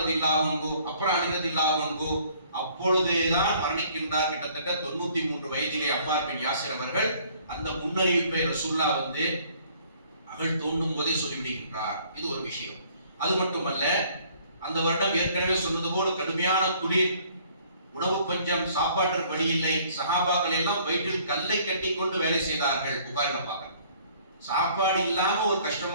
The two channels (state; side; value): inverted; both; correlation -0.58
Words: ரலியல்லாஹு அன்ஹு, அப்புறம் அலி ரலியல்லாஹு அன்ஹு. அப்பொழுதுதான் மரணிக்கின்றார். கிட்டத்தட்ட 93 வயதிலே அம்மார் பின் யாசிர் அவர்கள் அந்த முன்னறிவிப்பை ரசூலுல்லாஹ் வந்து அகழ் தோண்டும் போதே சொல்லிவிடுகின்றார். இது ஒரு விஷயம். அது மட்டுமல்ல, அந்த வருடம் ஏற்கனவே சொன்னது போல கடுமையான குளிர், உணவு பஞ்சம், சாப்பாட்டிற்கு வழி இல்லை. சஹாபாக்கள் எல்லாம் வயிற்றில் கல்லை கட்டி கொண்டு வேலை செய்தார்கள். புகாரில பார்க்க, சாப்பாடு இல்லாம ஒரு